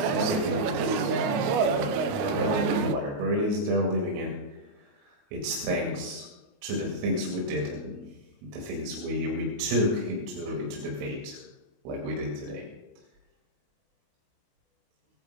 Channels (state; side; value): late; left; 29 ms